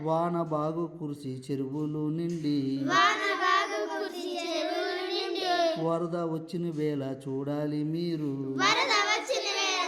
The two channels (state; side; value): identical; both; correlation 1.00